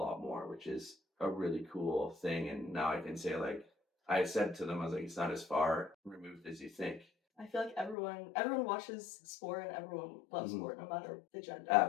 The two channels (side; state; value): right; drops out; at 8.0 s